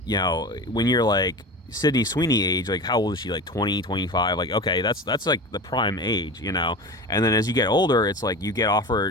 when you're like Sydney Sweeney age, like how old is she? Like 20, 25? Like okay, that's like the prime age, And then as you get older, it's like you get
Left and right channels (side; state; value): both; normal; correlation 0.31